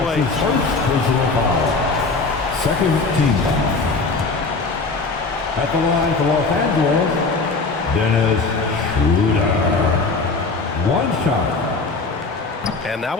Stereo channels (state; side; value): quieter; right; 3.9 dB